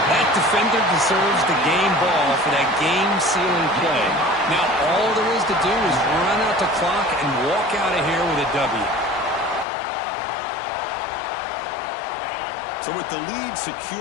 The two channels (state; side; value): drops out; right; at 9.7 s